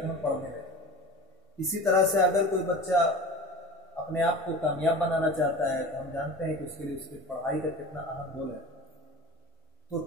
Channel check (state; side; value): normal; both; correlation 0.36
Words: ہم پڑھنے لگیں۔ اسی طرح سے اگر کوئی بچہ اپنے آپ کو کامیاب بنانا چاہتا ہے تو ہم جانتے ہیں کہ اس کے لیے اس کی پڑھائی کا کتنا اہم رول ہے۔ تو